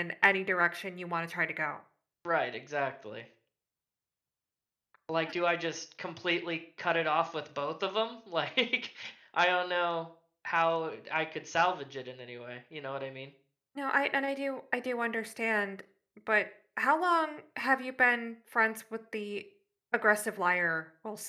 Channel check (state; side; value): identical; both; correlation 1.00